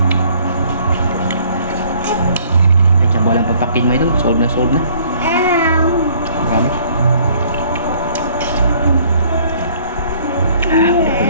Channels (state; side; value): inverted; both; correlation -0.58